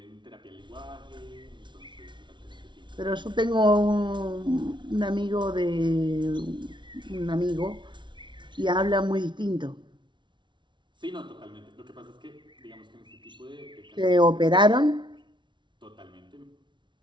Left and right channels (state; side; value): late; left; 0.23 ms